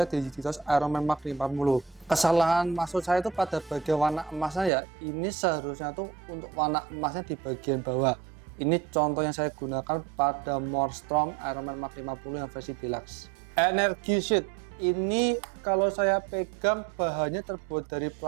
di Digitos Iron Man Mark 50. Kesalahan maksud saya itu pada bagian warna emasnya ya. Ini seharusnya tuh untuk warna emasnya di bagian bawah. Ini contoh yang saya gunakan pada More Strong Iron Man Mark 50 yang versi deluxe. Energy Sheet ini kalau saya pegang bahannya terbuat dari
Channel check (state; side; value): drops out; left; at 4.7 s